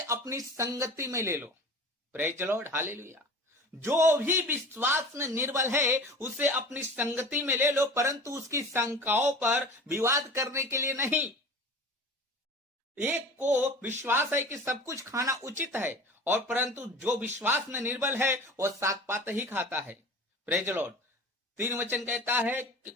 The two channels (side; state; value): both; normal; correlation 0.38